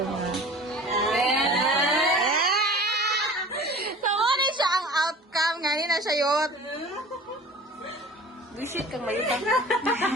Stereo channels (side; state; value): both; normal; correlation 0.41